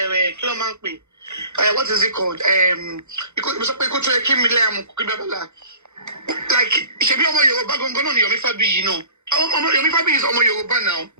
philmond. What is it called? Like, Shebi Omo Yoruba Gongono ni Yomi Fabi, Yomi Fabi is Omo Yoruba now.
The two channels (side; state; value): left; late; 0.83 ms